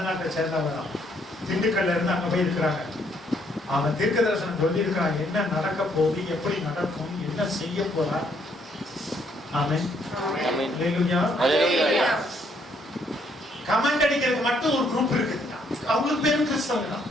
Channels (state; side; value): normal; both; correlation 0.70